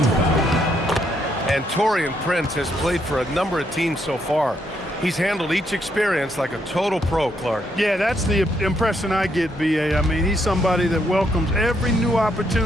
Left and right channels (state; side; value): normal; both; correlation 0.75